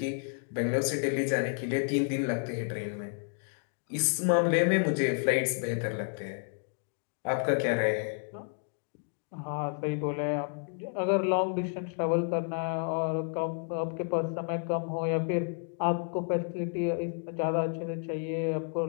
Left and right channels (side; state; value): right; silent; 56 dB below the other